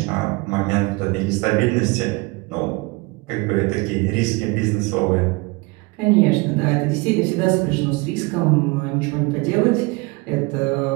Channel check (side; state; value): left; quieter; 25.3 dB